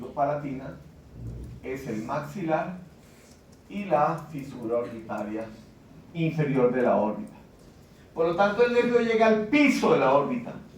es el maxilar y la fisura orbitaria inferior de la órbita. Por lo tanto, el nervio llega al piso de la órbita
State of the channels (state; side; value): identical; both; correlation 1.00